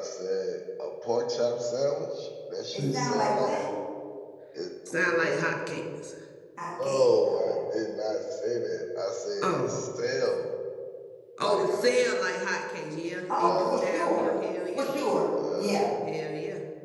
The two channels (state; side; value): identical; both; correlation 1.00